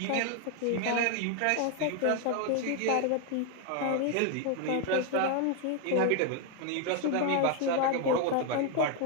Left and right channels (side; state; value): both; different; correlation 0.01